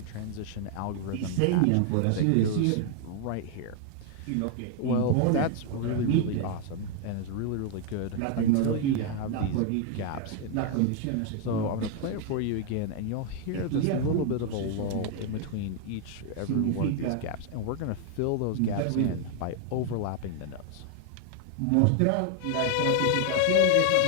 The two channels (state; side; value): different; both; correlation 0.00